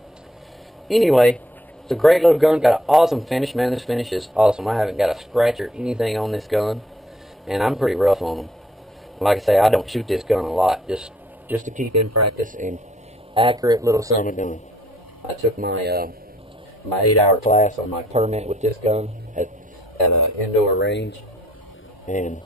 anyway, it's a great little gun. Got an awesome finish, man. This finish is awesome. I haven't got a scratch or anything on this gun, and I'm pretty rough on them. Like I say, I don't shoot this gun a lot, just to keep in practice and accurate little summer gun. I took my my 8-hour class on my permit with this gun at an indoor range, and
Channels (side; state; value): both; normal; correlation 0.65